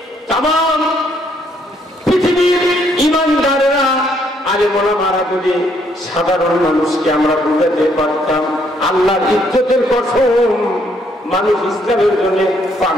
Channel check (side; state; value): both; normal; correlation 0.70